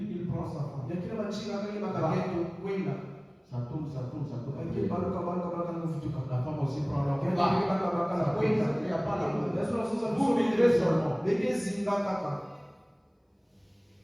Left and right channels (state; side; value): identical; both; correlation 1.00